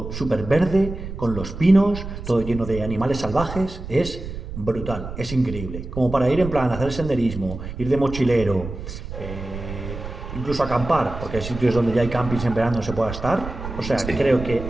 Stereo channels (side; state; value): right; noise; rumble, 9 dB below the sound